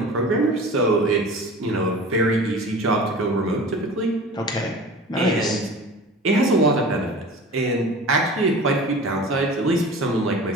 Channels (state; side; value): normal; both; correlation 0.38